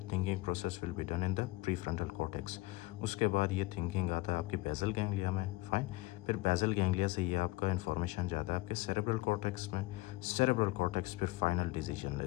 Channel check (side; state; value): right; quieter; 20.7 dB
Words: thinking process will be done in the prefrontal cortex. उसके बाद ये thinking आता है आपके basal ganglia में, fine. फिर basal ganglia से ये आपका इन्फॉर्मेशन जाता है आपके सेरेब्रल कॉर्टेक्स में। सेरेब्रल कॉर्टेक्स फिर फाइनल डिसीजन